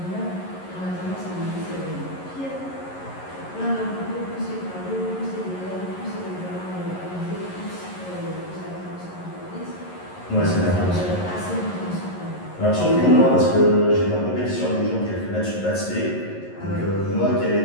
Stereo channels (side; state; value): right; late; 11 ms